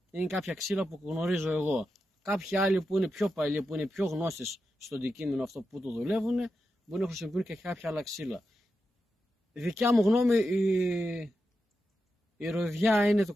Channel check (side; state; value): both; normal; correlation 0.89